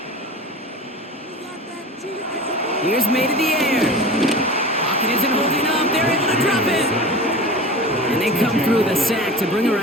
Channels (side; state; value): both; normal; correlation 0.34